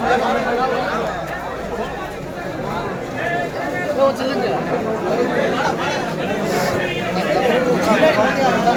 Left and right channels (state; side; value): identical; both; correlation 1.00